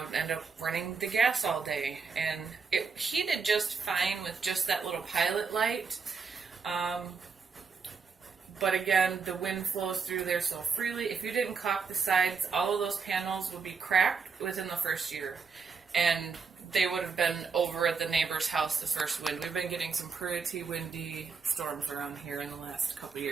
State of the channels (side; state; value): left; quieter; 5.3 dB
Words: would end up running the gas all day. And it heated just fine with just that little pilot light. But again, the wind flows through there so freely. If you didn't caulk the sides, all of those panels would be cracked within the first year. And they would have been over at the neighbor's house the first wind. We've been getting some pretty windy storms around here in the last couple of